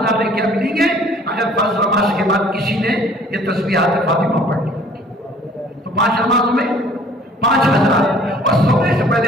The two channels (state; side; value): normal; both; correlation 0.54